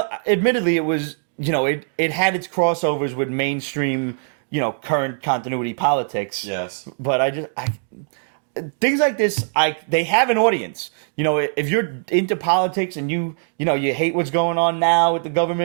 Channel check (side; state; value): left; silent; digital silence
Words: admittedly, it was, it had its crossovers with mainstream, current continuity politics. Yes. But things like this, they have an audience. If you're into politics and you hate what's going on now with the